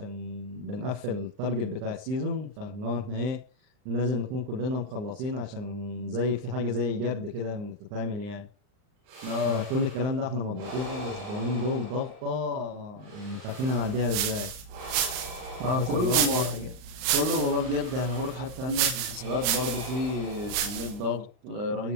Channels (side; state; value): left; late; 39 ms